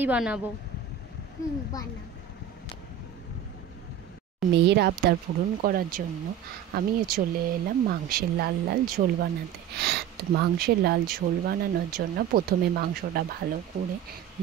বানাবো। বানাও। মেয়ের আবদার পূরণ করার জন্য আমিও চলে এলাম মাংসের লাল লাল ঝোল বানাতে। তো মাংসের লাল ঝোল বানানোর জন্য প্রথমে মাংসটা ভালো করে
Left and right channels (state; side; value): quieter; left; 9.2 dB